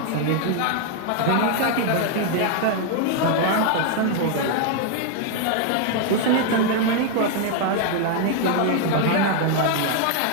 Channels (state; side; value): different; both; correlation 0.00